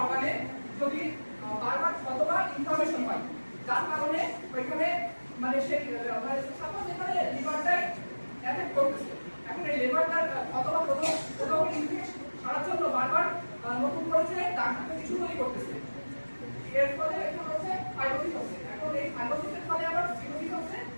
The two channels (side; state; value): both; inverted; correlation -1.00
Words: অর্গানে যদি বারবার কতবার ইনফরমেশন হয় যার কারণে ওইখানে মানে সেই মানে সাপোজ এখানে লিভারটাই অ্যাফেক্ট করতেছে। এখন এই লিভারটার অথবা কোথাও ইনফেকশন সারার জন্য বারবার নতুন করে যে ডাক্তার কিছু তৈরি করতেছে, এর ফলে এখন হচ্ছে ফাইব্রোসিস হচ্ছে। এখন এই ফাইব্রোসিসের ফলে আবার সিরোসিস হচ্ছে